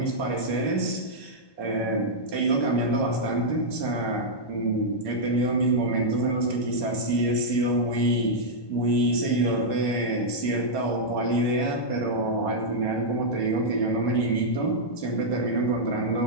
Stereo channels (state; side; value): late; right; 1.2 ms